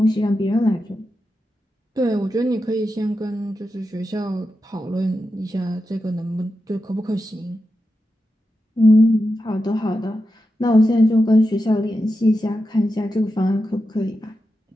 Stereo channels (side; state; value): both; normal; correlation 0.90